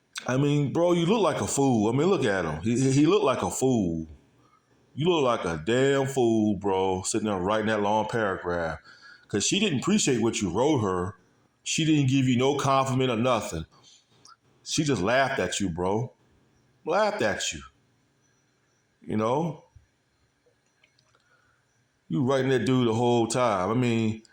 I mean, bro, you look like a fool. I mean, look at him. He looked like a fool. You look like a damn fool, bro, sitting there writing that long paragraph. Because she didn't appreciate what you wrote her. She didn't give you no compliment or nothing. She just laughed at you, bro. Laughed at you. You know? You writing that dude the whole time. I mean,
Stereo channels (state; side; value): identical; both; correlation 1.00